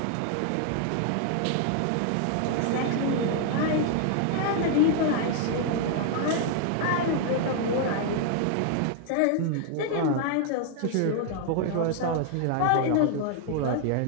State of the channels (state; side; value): different; both; correlation 0.00